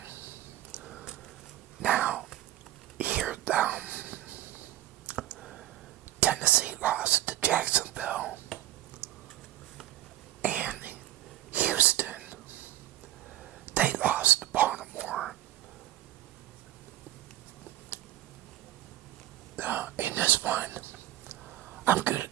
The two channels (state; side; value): quieter; left; 14.9 dB